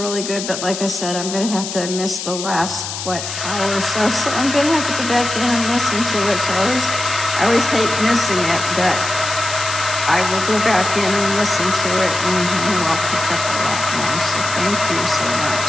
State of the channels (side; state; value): left; noise; hiss, 6 dB below the sound